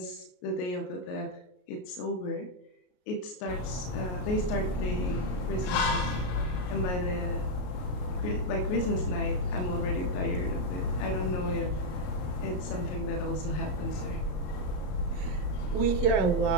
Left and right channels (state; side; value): late; right; 33 ms